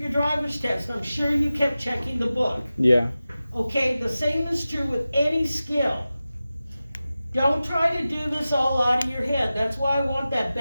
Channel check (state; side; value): inverted; both; correlation -0.95